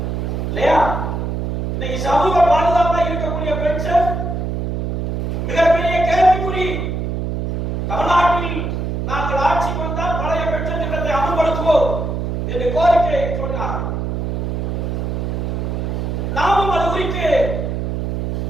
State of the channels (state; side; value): noise; right; hum, 2 dB below the sound